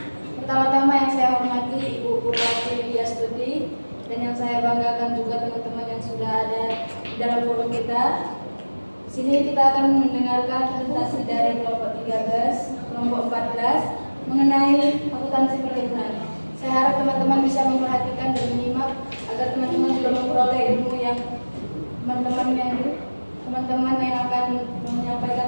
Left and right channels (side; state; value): both; inverted; correlation -1.00